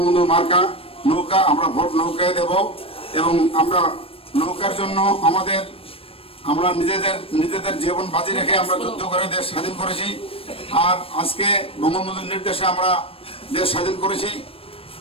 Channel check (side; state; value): right; late; 0.27 ms